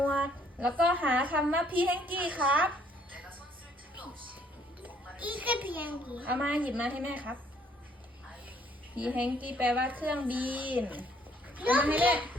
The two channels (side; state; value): both; normal; correlation 0.64